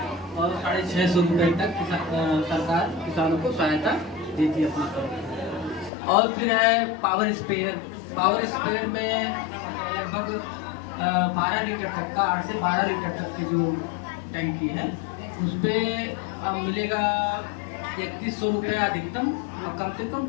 और 650 रुपये तक सरकार किसानों को सहायता देती है अपनी तरफ। और फिर है पावर स्प्रेयर में लगभग 12 लीटर तक का, 8 से 12 लीटर तक की जो टैंकी है, उस पर मिलेगा 3100 रुपया अधिकतम और कम से कम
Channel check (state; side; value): drops out; right; at 5.9 s